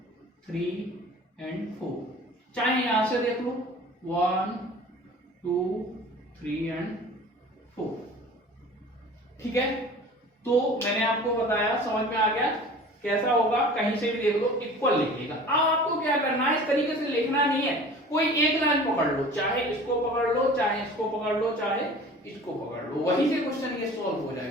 3 एंड 4, चाहे यहां से देख लो 1 2 3 एंड 4, ठीक है। तो मैंने आपको बताया, समझ में आ गया कैसा होगा, कहीं से भी देख लो इक्वल लिखिएगा। अब आपको क्या करना है, इस तरीके से लिखना नहीं है, कोई एक लाइन पकड़ लो, चाहे इसको पकड़ लो, चाहे इसको पकड़ लो, चाहे इसको पकड़ लो, वहीं से क्वेश्चन ये सॉल्व हो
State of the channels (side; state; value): both; normal; correlation 0.43